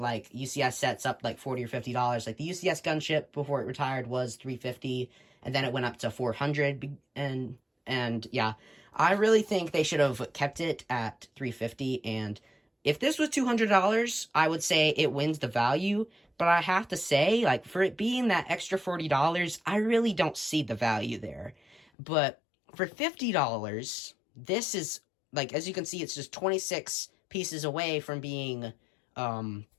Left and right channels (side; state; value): right; drops out; at 21.9 s